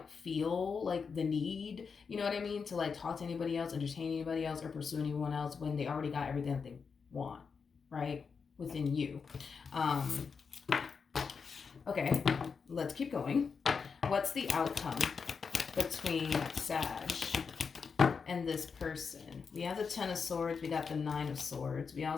feel like the need, you know what I mean, to like talk to anybody else, entertain anybody else, or pursue anyone else when they already got everything that they want, right, within you. Okay, let's keep going. What's the outcome between Sag and this person? We have the Ten of Swords. We got the Nine of Swords. We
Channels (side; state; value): right; quieter; 5.6 dB